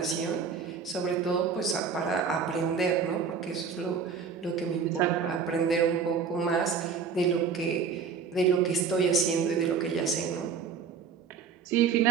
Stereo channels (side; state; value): left; quieter; 6.0 dB